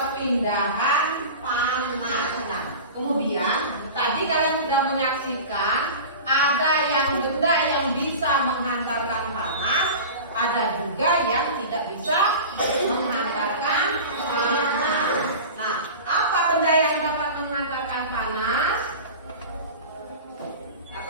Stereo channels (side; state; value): both; inverted; correlation -0.34